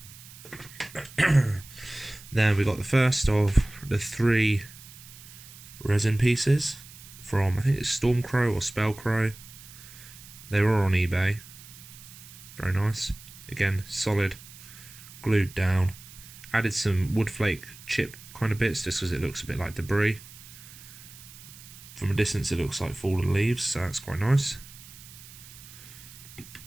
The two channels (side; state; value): right; noise; hiss, 18 dB below the sound